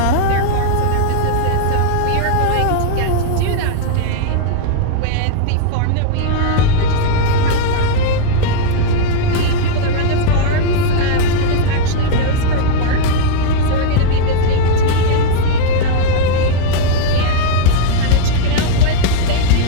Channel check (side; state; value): both; different; correlation 0.00